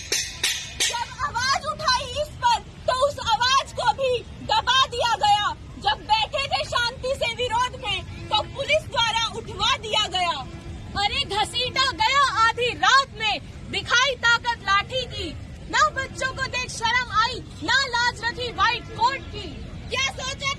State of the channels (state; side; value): identical; both; correlation 1.00